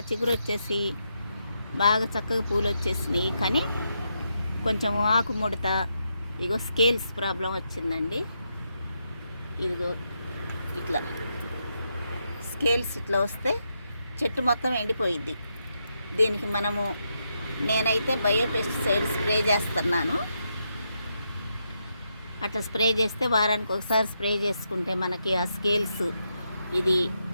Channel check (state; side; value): inverted; both; correlation -0.82